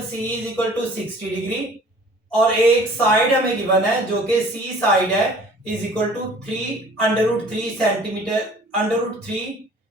C is equal to 60 degree और एक साइड हमें गिवन है जो कि सी साइड है is equal to 3 centimetre, √3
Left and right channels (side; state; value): both; normal; correlation 0.50